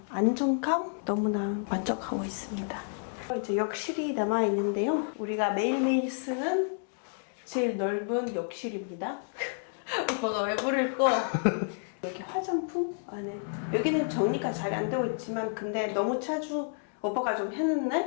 안정감 너무나 만족하고 있습니다. 이제 욕실이 남아 있는데요. 우리가 매일매일 쓰는 제일 넓은 욕실입니다. 오빠가 왜 부를 거? 여기 화장품 안에 여기는 정리가 잘 안 되고 있지만 근데 너무 자주 오빠가 좀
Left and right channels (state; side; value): silent; right; digital silence